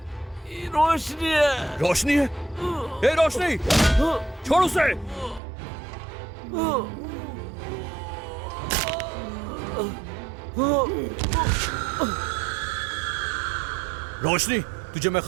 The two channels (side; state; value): left; drops out; at 5.4 s